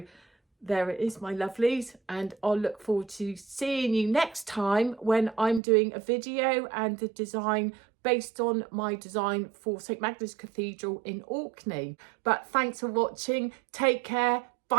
there it is, my lovelies, and I'll look forward to seeing you next time when I'm doing a video and a design based on my design for St Magdalene Cathedral in Orkney. But thanks for watching. Take care.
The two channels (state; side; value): drops out; left; at 5.6 s